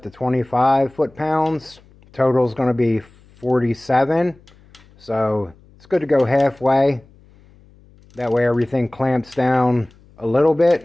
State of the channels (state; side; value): noise; left; hum, 28 dB below the sound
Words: to 25 foot-pounds. Total is going to be 47. So it's good to go halfway. That way everything clamps down a little